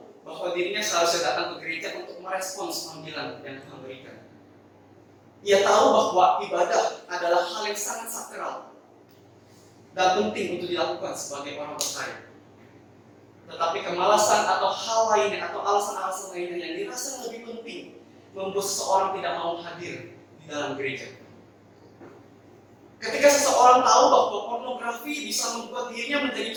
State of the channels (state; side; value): identical; both; correlation 1.00